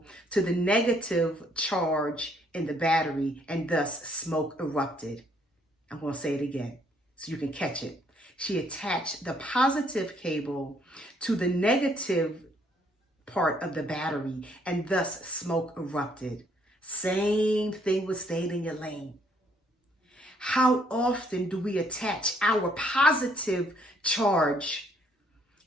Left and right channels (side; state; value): both; normal; correlation 0.67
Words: to the negative charge in the battery, and thus smoke erupted. I'm going to say it again so you can catch it. She attached the positive cable to the negative part of the battery, and thus smoke erupted. Same thing with staying in your lane. How often do we attach our positive charge